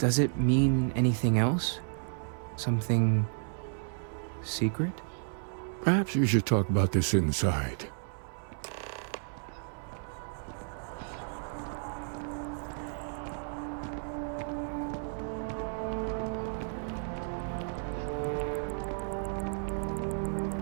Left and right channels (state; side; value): silent; left; 56 dB below the other